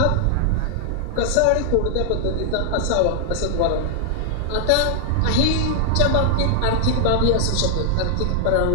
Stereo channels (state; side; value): different; both; correlation 0.00